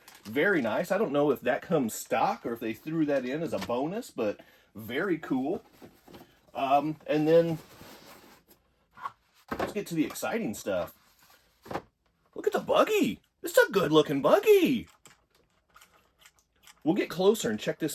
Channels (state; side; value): identical; both; correlation 1.00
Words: Very nice. I don't know if that comes stock or if they threw that in as a bonus, but very cool. And then let's get to the exciting stuff. Look at the buggy. This is a good looking buggy. We'll get closer and check